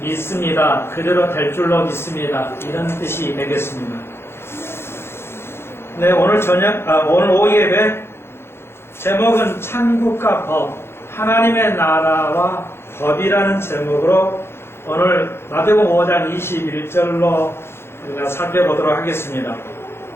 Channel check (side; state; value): right; late; 0.12 ms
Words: 그대로 될 줄로 믿습니다. 이런 뜻이 되겠습니다. 네, 오늘 오후 예배 제목은 천국과 법, 하나님의 나라와 법이라는 제목으로 오늘 마태복음 5장 21절로 우리가 살펴보도록 하겠습니다.